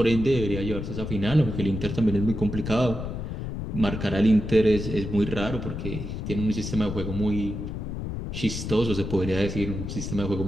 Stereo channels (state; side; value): noise; left; rumble, 5 dB below the sound